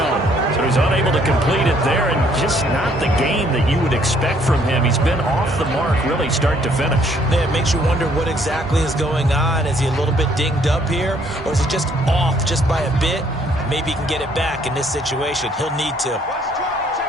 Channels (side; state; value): both; normal; correlation 0.65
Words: So he's unable to complete it there, and just not the game that you would expect from him. He's been off the mark really start to finish. Yeah, it makes you wonder what exactly is going on. Is he a little bit dinged up here, or is it just off just by a bit? Maybe he can get it back in this situation. He'll need to.